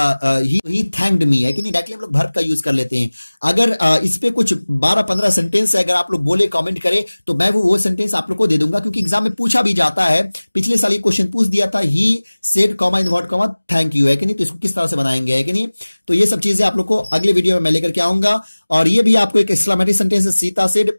थैंक्ड मी है कि नहीं, डायरेक्टली हम लोग वर्ब का यूज कर लेते हैं। अगर इस पे कुछ 12-15 सेंटेंस है, अगर आप लोग बोले कमेंट करें तो मैं वो सेंटेंस आप लोग को दे दूंगा, क्योंकि एग्जाम में पूछा भी जाता है। पिछले साल ये क्वेश्चन पूछ दिया था, he said comma invert comma thank you है कि नहीं, तो इसको किस तरह से बनाएंगे है कि नहीं। तो ये सब चीजें आप लोग को अगले वीडियो में मैं लेकर के आऊंगा। और ये भी आपको एक एक्सक्लेमेटरी सेंटेंस है, Sita said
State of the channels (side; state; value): both; inverted; correlation -1.00